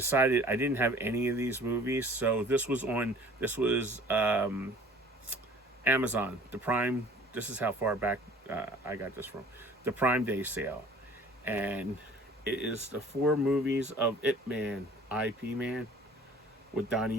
I didn't have any of these movies, so this was Amazon, the Prime. This is how far back I got this from. The Prime Day sale. And it is the 4 movies of Ip Man, IP Man, with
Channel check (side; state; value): both; normal; correlation 0.50